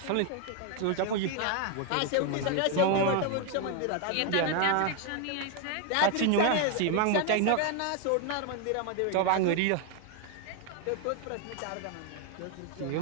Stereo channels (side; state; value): both; different; correlation 0.01